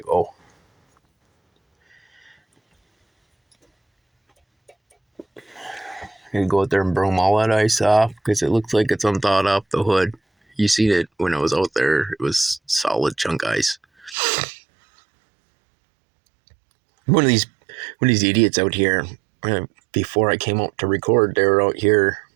go. You go out there and broom all that ice off, because it looks like it's unthawed off the hood. You seen it when I was out there. It was solid chunk ice. One of these idiots out here, before I came out to record, they were out here,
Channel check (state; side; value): drops out; left; at 14.2 s